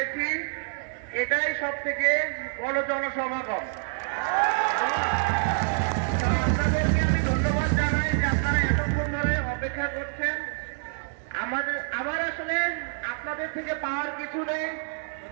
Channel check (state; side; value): silent; left; 60 dB below the other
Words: এটাই সব থেকে বড় জনসমাগম। আপনাদেরকে আমি ধন্যবাদ জানাই যে আপনারা এতক্ষণ ধরে অপেক্ষা করছেন। আমার আসলে আপনাদের থেকে পাওয়ার কিছু নেই,